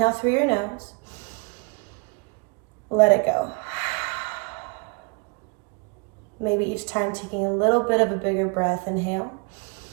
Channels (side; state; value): left; quieter; 31.8 dB